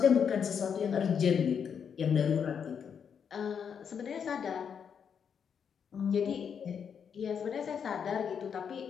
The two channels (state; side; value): quieter; right; 7.2 dB